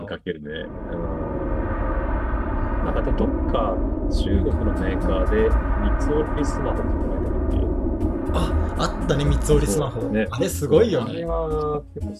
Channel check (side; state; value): both; identical; correlation 1.00